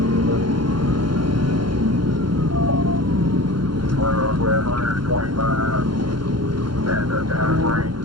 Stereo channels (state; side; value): late; left; 0.72 ms